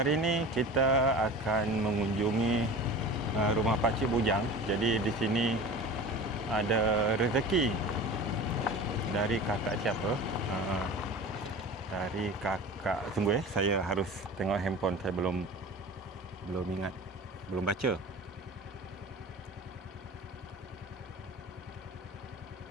ini kita akan mengunjungi rumah Pakcik Bujang. Jadi di sini ada rezeki dari kakak siapa? Dari kakak, tunggu saya harus tengok handphone, saya belum ingat, belum baca.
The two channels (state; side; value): normal; both; correlation 0.36